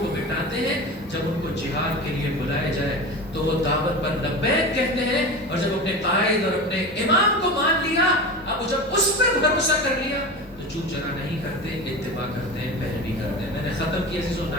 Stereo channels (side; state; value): both; normal; correlation 0.28